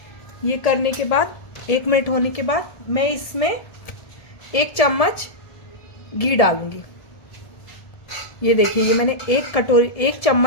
ये करने के बाद 1 मिनट होने के बाद मैं इसमें 1 चम्मच घी डालूंगी। ये देखिए, ये मैंने 1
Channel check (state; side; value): late; right; 1.4 ms